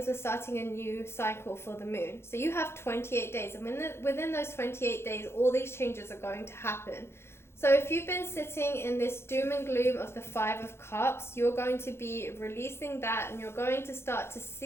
we're starting a new cycle for the moon. So you have 28 days, and within those 28 days, all these changes are going to happen. So if you've been sitting in this doom and gloom of the 5 of Cups, you're going to be releasing that, and you're going to start to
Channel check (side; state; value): right; late; 0.12 ms